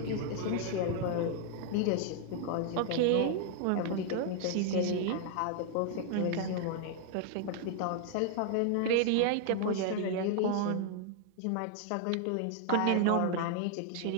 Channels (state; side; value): different; both; correlation 0.00